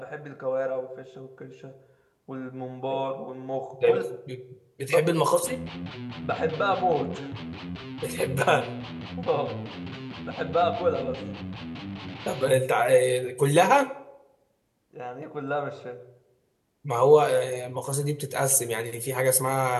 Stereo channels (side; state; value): both; identical; correlation 1.00